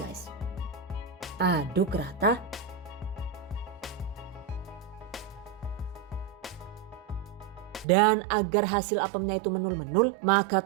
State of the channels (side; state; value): left; drops out; at 7.9 s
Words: Aduk rata. Dan agar hasil apemnya itu menul-menul, maka